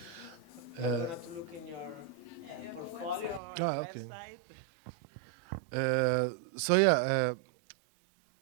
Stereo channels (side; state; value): left; drops out; at 3.4 s